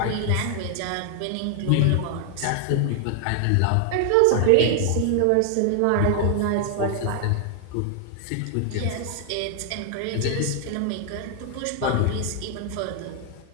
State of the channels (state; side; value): different; both; correlation 0.00